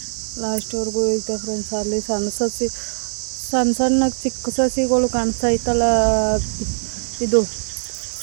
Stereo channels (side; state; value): left; silent; 65 dB below the other